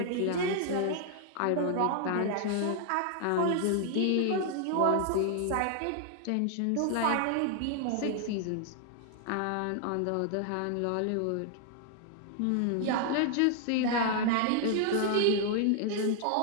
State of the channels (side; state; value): both; different; correlation 0.00